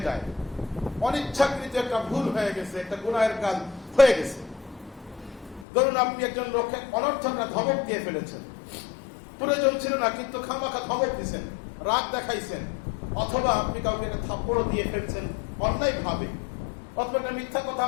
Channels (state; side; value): drops out; right; at 5.7 s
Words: যায়, অনিচ্ছাকৃত একটা ভুল হয়ে গেছে, একটা গুনাহের কাজ হয়ে গেছে, ধরুন আপনি একজন লোককে অনর্থক ধমক দিয়ে ফেলেছেন, প্রয়োজন ছিল না কিন্তু খামাখা ধমক দিয়েছেন, রাগ দেখাইছেন, অথবা আপনি কাউকে একটা থাপ্পড় দিয়ে ফেলছেন অন্যায় ভাবে, অথবা একটা মিথ্যা কথা